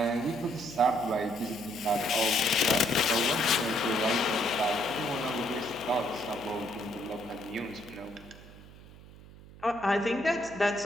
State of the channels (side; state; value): right; noise; hum, 19 dB below the sound